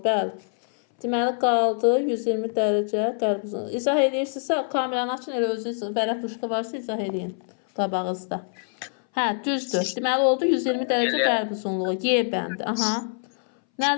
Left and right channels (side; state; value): right; silent; 60 dB below the other